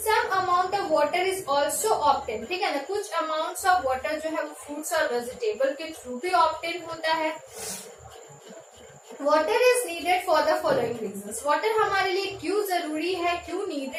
Some amount of water is also obtain. ठीक है ना, कुछ अमाउंट्स ऑफ वाटर जो है वो फ्रूट्स और वेजिटेबल के थ्रू भी ऑब्टेन होता है. Water is needed for the following reasons. Water हमारे लिए क्यों जरूरी है, क्यों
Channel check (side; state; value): both; identical; correlation 1.00